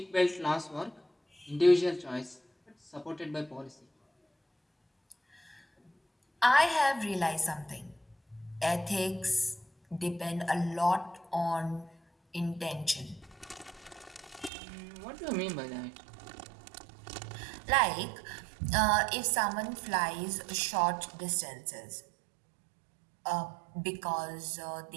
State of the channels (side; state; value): left; drops out; at 14.5 s